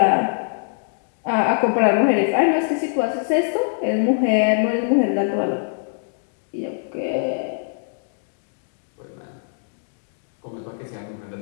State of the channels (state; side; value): silent; right; digital silence